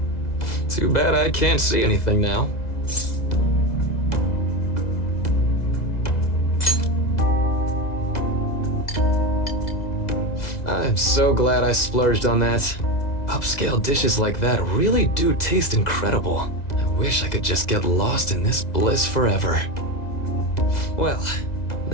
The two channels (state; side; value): late; right; 2.0 ms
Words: Too bad I can't see anything now. I'm so glad I splurged on that. Upscale dishes like that really do taste incredible. I wish I could just get lost in this bliss forever. Well,